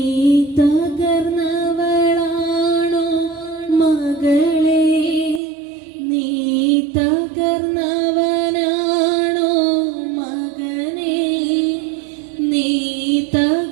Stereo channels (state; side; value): drops out; left; at 5.4 s